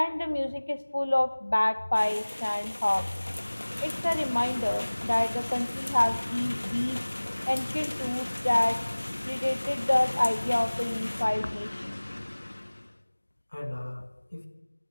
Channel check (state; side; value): inverted; both; correlation -1.00